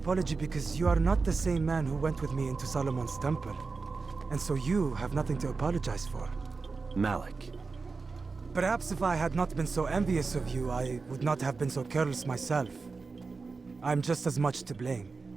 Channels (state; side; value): quieter; left; 4.3 dB